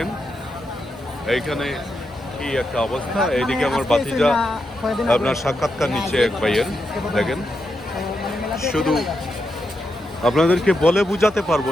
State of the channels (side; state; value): both; normal; correlation 0.85